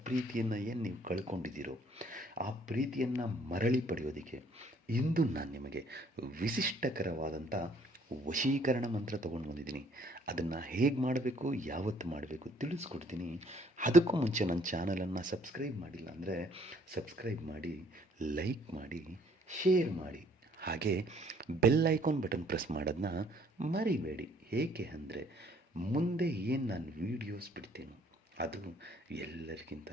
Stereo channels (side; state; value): both; normal; correlation 0.62